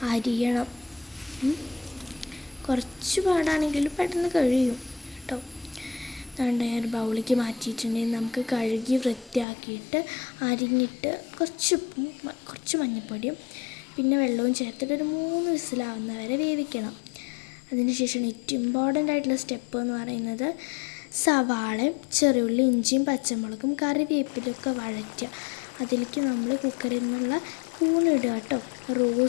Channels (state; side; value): drops out; right; at 9.5 s